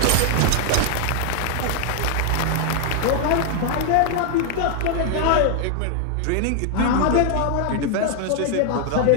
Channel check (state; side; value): different; both; correlation 0.00